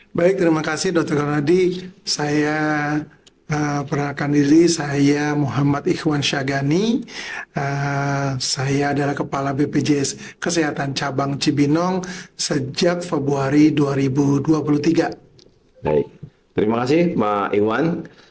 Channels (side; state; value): both; identical; correlation 1.00